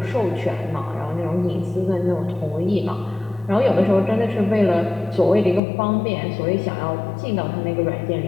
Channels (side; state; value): right; drops out; at 5.6 s